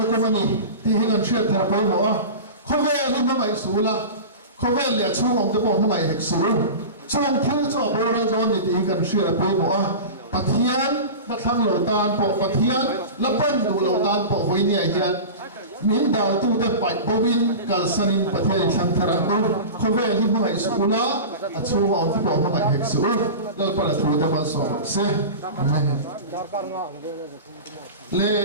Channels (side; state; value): both; inverted; correlation -0.30